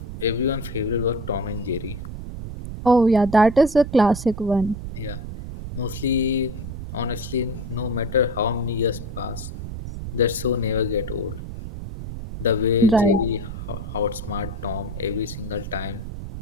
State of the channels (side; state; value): right; noise; rumble, 8 dB below the sound